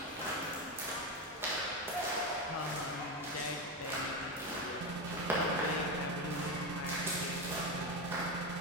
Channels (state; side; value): normal; both; correlation 0.14